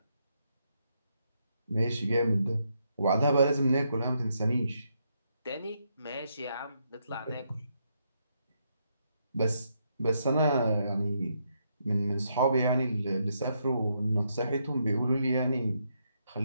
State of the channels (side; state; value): both; inverted; correlation -0.78